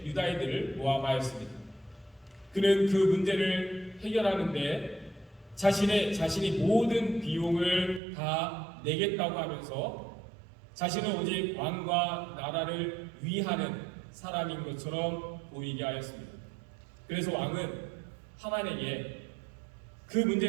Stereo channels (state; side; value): drops out; left; at 8.0 s